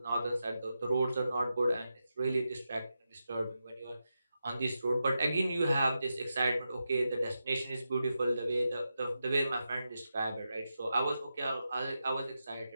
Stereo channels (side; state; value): both; inverted; correlation -0.88